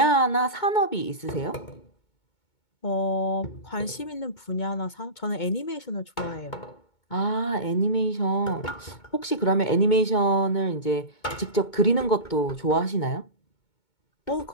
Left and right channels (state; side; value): late; right; 2.2 ms